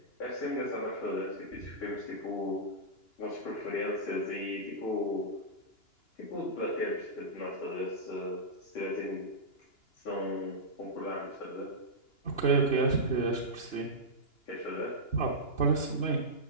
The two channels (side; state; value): right; late; 2.9 ms